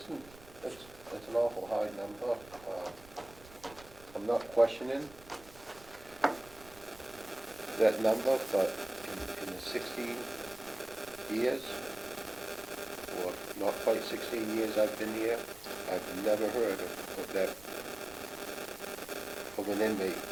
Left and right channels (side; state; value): right; noise; rumble, 21 dB below the sound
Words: an awful high number. I'm not questioning that number, but in the 16 years, or not quite 16 years I've been here, I've never heard of that, of an inmate